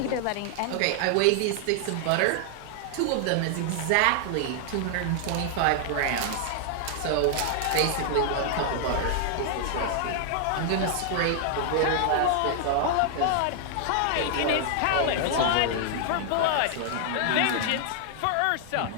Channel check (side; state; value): both; different; correlation 0.00